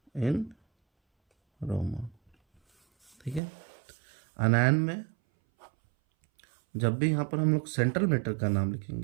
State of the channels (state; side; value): drops out; left; at 3.4 s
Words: इन रोमन। ठीक है, अनायन में जब भी यहाँ पर हम लोग सेंट्रल मेटल का नाम